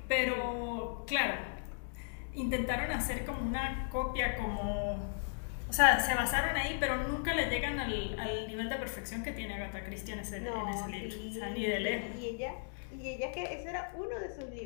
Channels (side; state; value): right; silent; digital silence